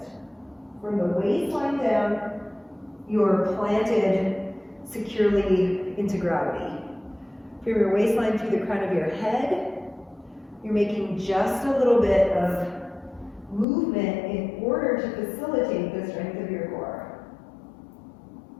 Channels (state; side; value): drops out; right; at 13.7 s